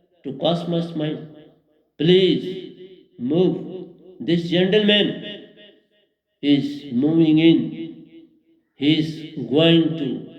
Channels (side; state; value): both; identical; correlation 1.00